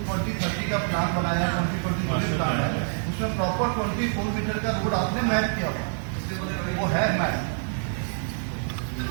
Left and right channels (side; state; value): left; silent; 61 dB below the other